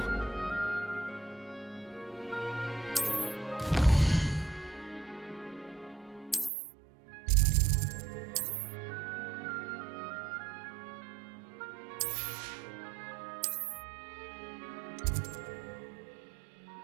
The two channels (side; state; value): left; drops out; at 6.5 s